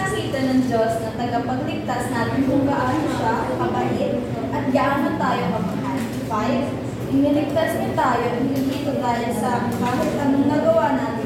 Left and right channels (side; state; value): both; identical; correlation 1.00